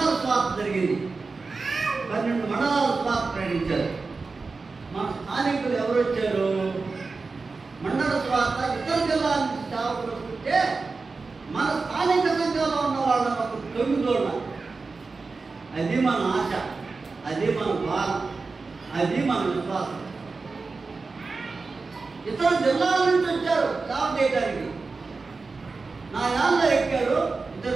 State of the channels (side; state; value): left; quieter; 4.1 dB